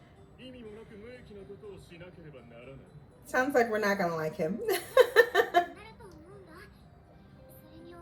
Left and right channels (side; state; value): both; identical; correlation 1.00